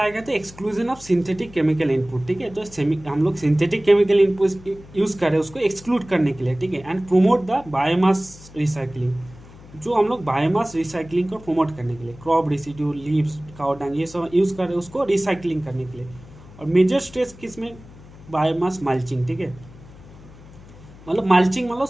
गया था exclusion of synthetic chemical input, ठीक है। तो हम लोग सिंथेटिक केमिकल इनपुट यूज़ कर रहे हैं उसको एक्सक्लूड करने के लिए, ठीक है। And promote the biomass recycling, जो हम लोग बायोमास रिसाइकलिंग को प्रमोट करने के लिए crop residue, leaves, cow dung, ये सब यूज़ कर रहे हैं उसको रिसाइकलिंग करने के लिए। और मेजर स्ट्रेस किस में, बायोमास मल्चिंग, ठीक है। मतलब मल्चिंग मतलब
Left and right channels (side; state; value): left; noise; hum, 20 dB below the sound